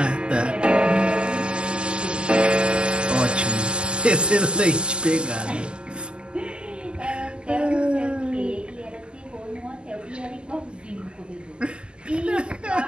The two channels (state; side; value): late; left; 0.053 ms